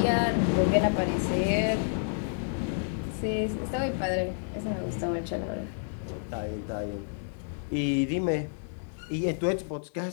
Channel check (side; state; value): right; silent; 58 dB below the other